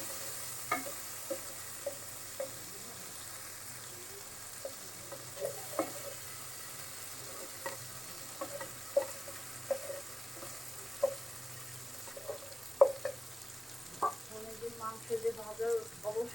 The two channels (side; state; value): both; normal; correlation 0.96